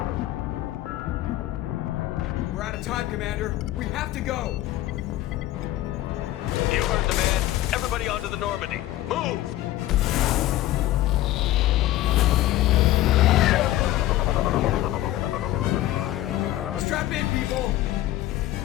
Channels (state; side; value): quieter; right; 15.0 dB